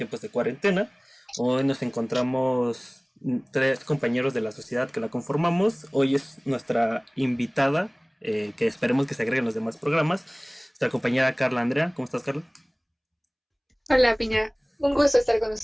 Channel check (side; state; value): both; identical; correlation 1.00